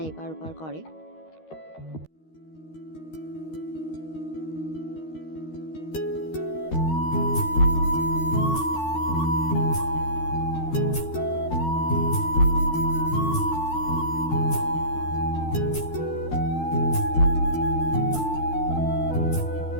এপার ওপার করে।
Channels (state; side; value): late; right; 13 ms